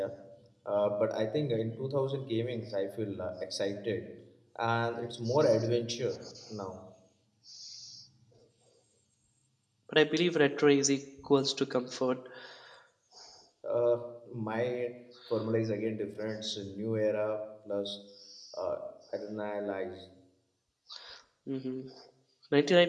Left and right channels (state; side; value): identical; both; correlation 1.00